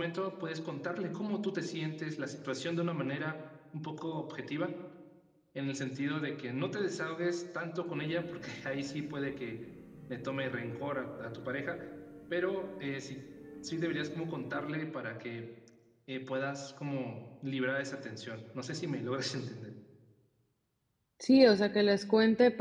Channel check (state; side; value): identical; both; correlation 1.00